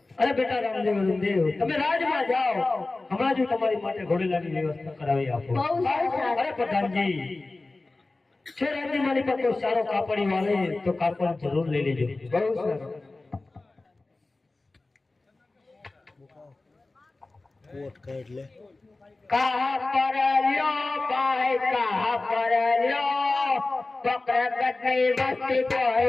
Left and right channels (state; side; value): quieter; right; 3.2 dB